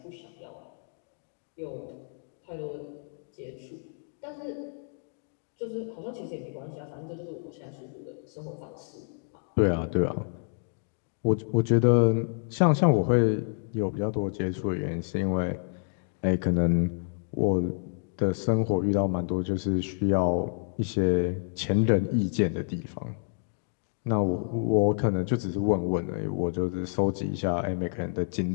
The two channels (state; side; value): silent; right; digital silence